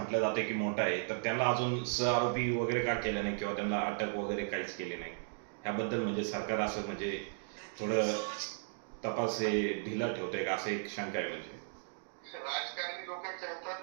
जातं की मोठा आहे, तर त्यांना अजून सहआरोपी वगैरे का केलं नाही किंवा त्यांना अटक वगैरे काहीच केली नाही? ह्याबद्दल म्हणजे सरकार असं म्हणजे थोडं तपास हे ढिला ठेवतंय का, असं एक शंका आहे. म्हणजे राजकारणी लोकांच्या हातात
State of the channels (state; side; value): silent; left; digital silence